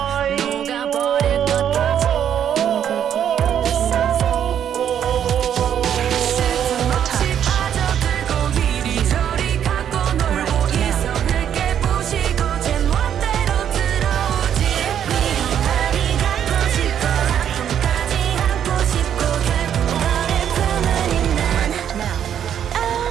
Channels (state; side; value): quieter; left; 9.4 dB